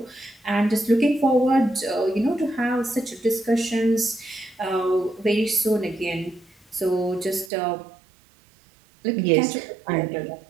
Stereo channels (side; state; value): left; drops out; at 7.5 s